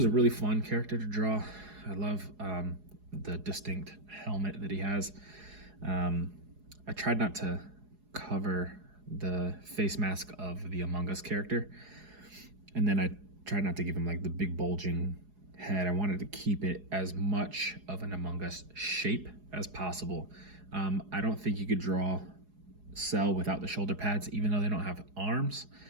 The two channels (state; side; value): late; left; 4.8 ms